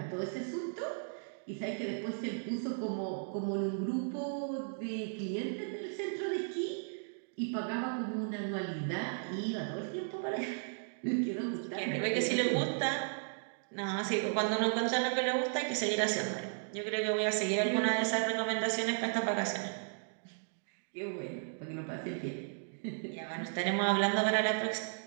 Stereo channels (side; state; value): left; silent; digital silence